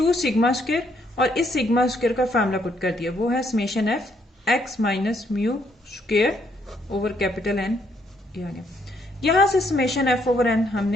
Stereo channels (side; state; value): both; normal; correlation 0.72